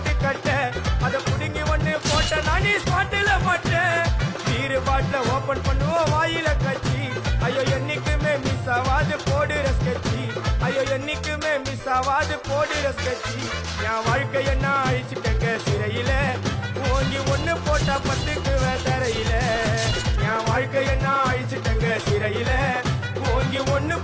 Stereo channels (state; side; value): identical; both; correlation 1.00